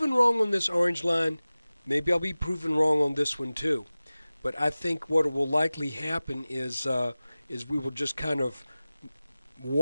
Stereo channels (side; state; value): both; inverted; correlation -0.97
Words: wrong on this orange line. Maybe I'll be proven wrong on this one too. But I think what will likely happen is we will just kind of